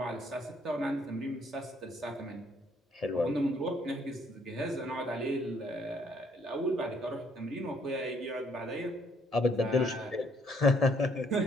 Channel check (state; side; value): normal; both; correlation 0.67